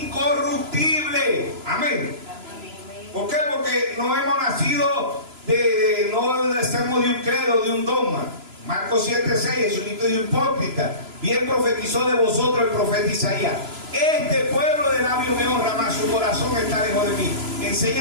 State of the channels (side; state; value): left; late; 3.0 ms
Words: Amén. ¿Por qué? Porque no hemos nacido no nacemos de un credo, de un dogma. Marcos 7:6, Jesucristo dijo, hipócrita, bien profetizó de vosotros el profeta Isaías. Este pueblo de labios me honra, mas su corazón está lejos de mí.